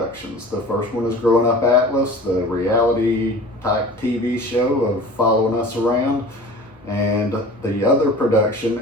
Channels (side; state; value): both; normal; correlation 0.40